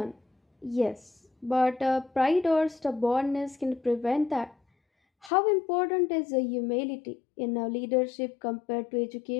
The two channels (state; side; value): drops out; right; at 5.3 s